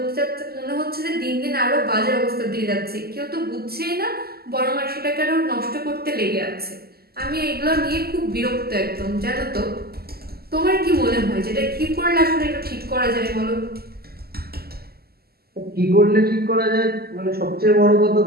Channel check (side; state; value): left; late; 0.45 ms